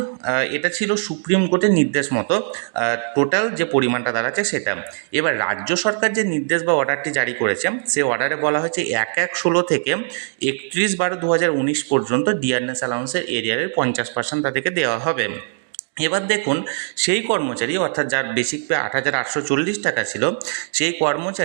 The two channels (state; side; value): silent; left; digital silence